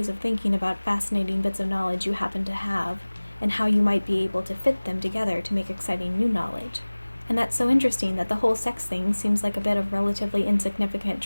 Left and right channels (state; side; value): inverted; both; correlation -1.00